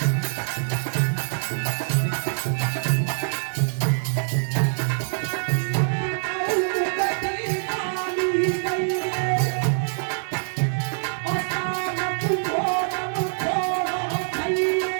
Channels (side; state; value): left; silent; digital silence